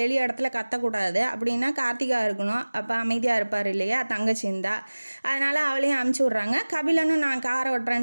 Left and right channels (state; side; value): inverted; both; correlation -1.00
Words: இடத்துல கத்தக்கூடாது அப்படின்னா கார்த்திகா இருக்கணும், அப்போ அமைதியாக இருப்பார் இல்லையா தங்கச்சி இருந்தா, அதனால் அவளையும் அனுப்பிச்சி விட்றாங்க. கபிலனும் நான் காரை